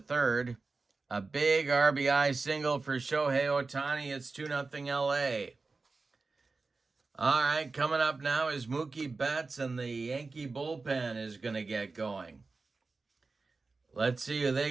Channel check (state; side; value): quieter; left; 3.9 dB